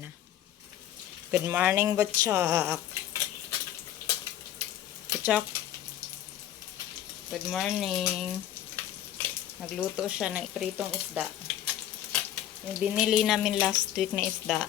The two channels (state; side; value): quieter; right; 11.6 dB